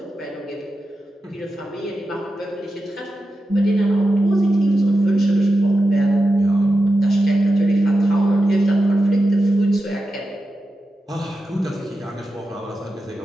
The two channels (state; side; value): normal; both; correlation 0.91